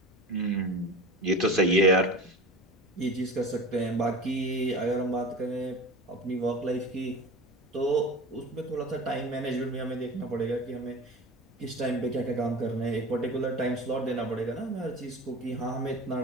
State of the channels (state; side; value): normal; both; correlation 0.34